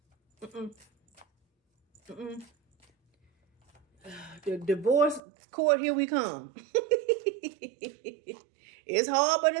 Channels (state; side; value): drops out; left; at 5.2 s